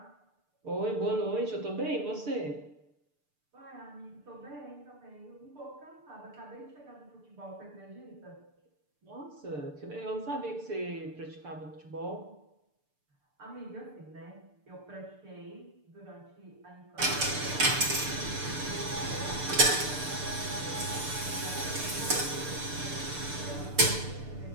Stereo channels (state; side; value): late; left; 6.8 ms